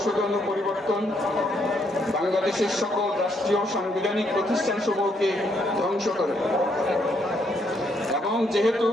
ও পরিবর্তন বাংলাদেশের সকল রাষ্ট্রীয় সাংবিধানিক প্রতিষ্ঠান সমূহকে ধ্বংস করে এবং যেহেতু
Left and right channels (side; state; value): both; normal; correlation 0.73